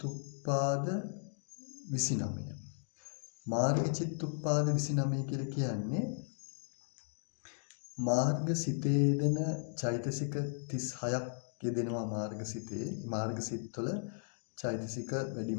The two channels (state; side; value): silent; right; digital silence